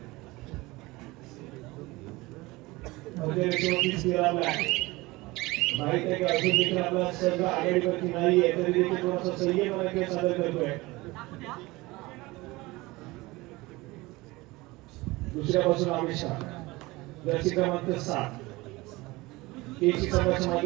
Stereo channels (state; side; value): quieter; left; 21.4 dB